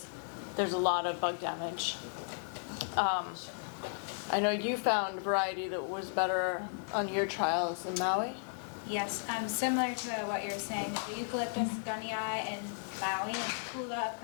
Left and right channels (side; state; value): right; silent; digital silence